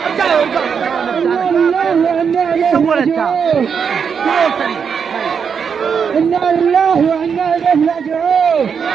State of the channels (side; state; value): left; quieter; 6.6 dB